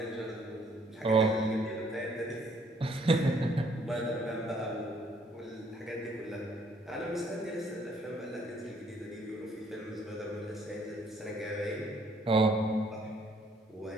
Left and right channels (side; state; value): both; normal; correlation 0.65